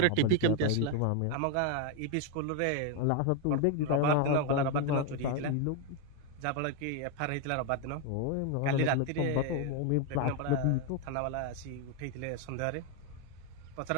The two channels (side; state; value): both; different; correlation 0.01